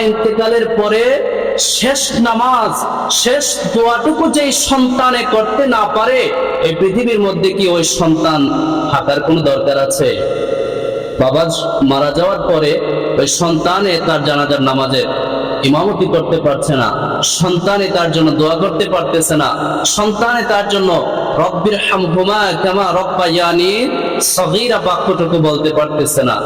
ইন্তেকালের পরে শেষ নামাজ, শেষ দোয়াটুকু যেই সন্তানে করতে না পারে, এই পৃথিবীর মধ্যে কি ওই সন্তান থাকার কোনো দরকার আছে? বাবা মারা যাওয়ার পরে ওই সন্তানে তার জানাজার নামাজে ইমামতি করতে পারছে না, সন্তানে তার জন্য দোয়া করতে পারতেছে না, সন্তানে তার জন্য রব্বির হামহুমা কামা রব্বায়ানি সগীরা বাক্যটুকু বলতে পারতেছে না।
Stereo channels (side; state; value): right; noise; hum, 26 dB below the sound